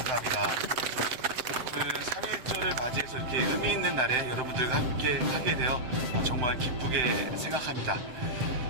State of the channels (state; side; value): late; left; 7.8 ms